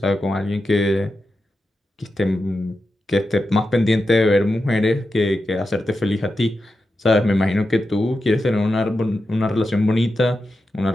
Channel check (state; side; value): normal; both; correlation 0.90